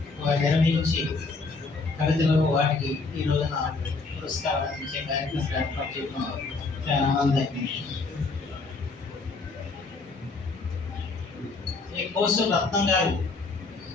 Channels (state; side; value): quieter; right; 3.9 dB